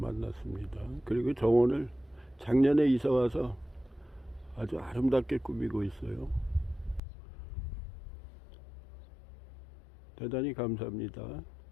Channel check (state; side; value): drops out; right; at 7.0 s